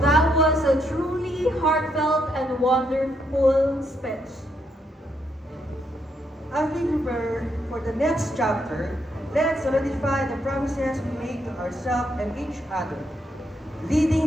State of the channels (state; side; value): normal; both; correlation 0.77